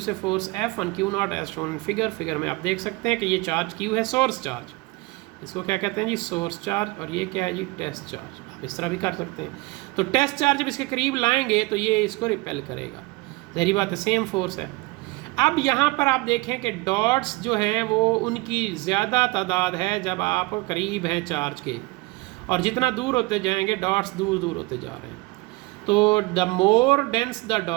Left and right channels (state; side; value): quieter; left; 23.5 dB